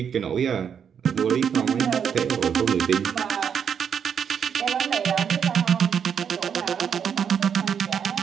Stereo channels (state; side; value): quieter; left; 7.6 dB